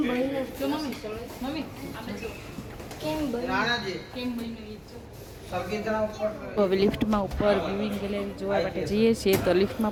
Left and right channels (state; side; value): identical; both; correlation 1.00